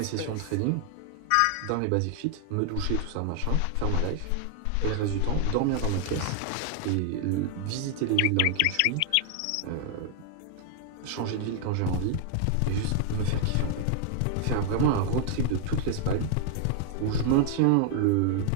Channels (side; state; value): both; different; correlation 0.00